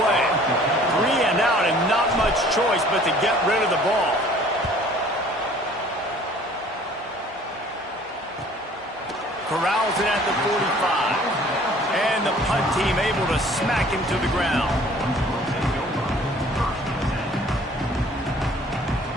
3 and out, and not much choice but to get rid of the ball. Corrals it at the 45. And the punt team able to smack him to the ground.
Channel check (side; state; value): both; normal; correlation 0.53